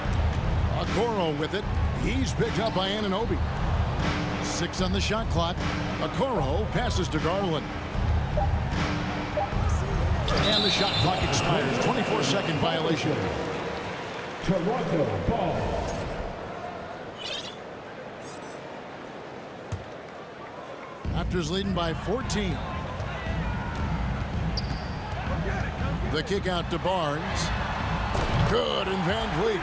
Okoro with it. He's picked up by Anunoby. 6 on the shot clock. Okoro passes to Garland. And the shot clock expires. 24-second violation. Toronto ball. Raptors leading by 14. The kick out to Barnes. Good, and Van Vliet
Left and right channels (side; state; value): both; identical; correlation 1.00